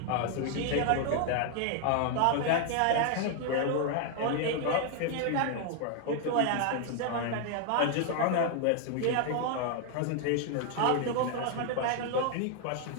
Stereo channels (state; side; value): different; both; correlation 0.00